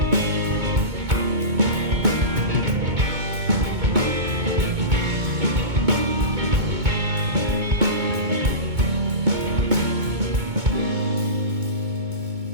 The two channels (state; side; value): late; left; 2.2 ms